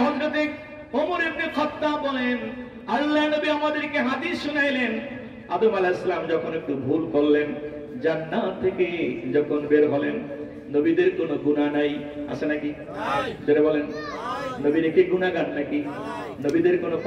হযরত ওমর ইবনে খাত্তাব বলেন, আল্লাহ নবী আমাদেরকে হাদিস শুনাইলেন, আদম আলাইহিস সালাম যখন একটু ভুল করলেন, জান্নাত থেকে যখন বের হলেন, নবীদের কোনো গুনাহ নাই, আছে নাকি? যারা বলেন নবীর কি গুনাহগার নাকি? নবীদের কোনো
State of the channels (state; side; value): identical; both; correlation 1.00